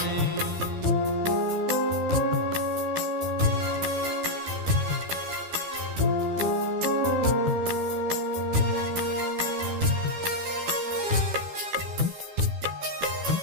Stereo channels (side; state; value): left; late; 12 ms